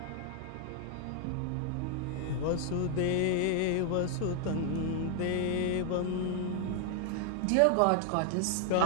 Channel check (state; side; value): different; both; correlation 0.00